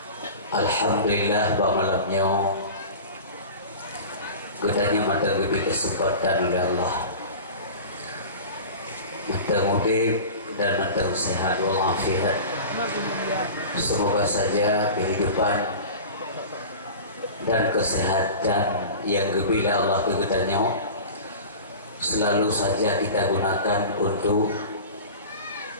Alhamdulillah bahwa malamnya kita hanya mata lebih kesempatan oleh Allah, mata mudik dan mata sehat walafiat. Semoga saja kehidupan dan kesehatan yang gebila Allah kegetanya selalu saja kita gunakan untuk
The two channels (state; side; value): inverted; both; correlation -0.35